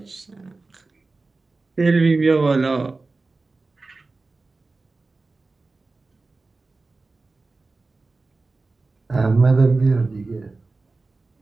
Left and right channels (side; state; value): left; quieter; 3.6 dB